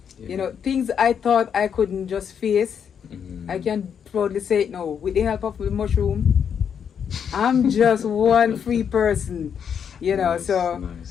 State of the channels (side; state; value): right; quieter; 7.7 dB